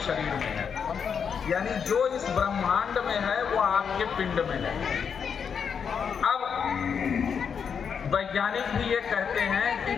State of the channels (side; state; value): right; quieter; 6.8 dB